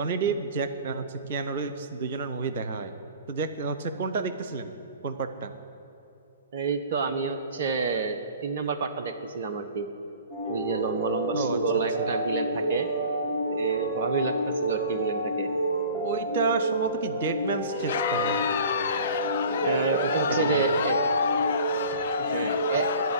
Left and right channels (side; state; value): both; inverted; correlation -0.44